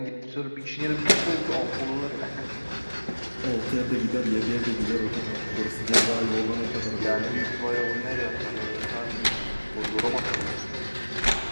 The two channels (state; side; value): inverted; both; correlation -1.00